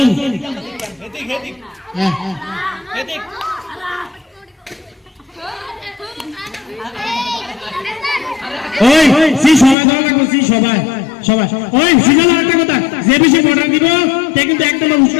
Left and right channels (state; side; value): drops out; right; at 9.8 s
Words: এদিক এদিক হ্যাঁ এদিক ওই সি সবাই ধরা লাগবে, সি সবাই সবাই ওই সিজন একটা কথা, যে বেশি অর্ডার দিব তে কিন্তু একদম